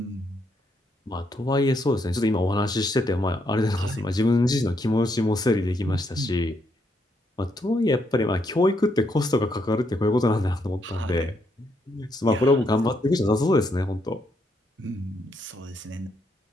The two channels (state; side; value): normal; both; correlation 0.76